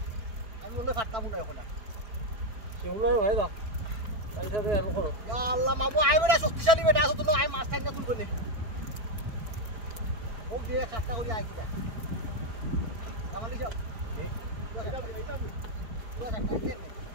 আমি বলে ফাটতাম না এখন সেগুলোই হয় দাও তাইলে আলো করো ইয়া আল্লাহ মামু আইবরা শক্তিশালী বেটা আছে তো আই মাছ টাইনা তুলবো নে ও দিয়ে কাটটা করি আই কিটা কামালি যাও পুরো কাটটা আইতে নে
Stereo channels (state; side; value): late; left; 4.4 ms